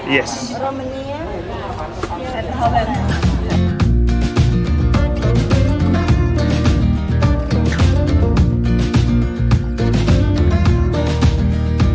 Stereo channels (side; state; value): both; identical; correlation 1.00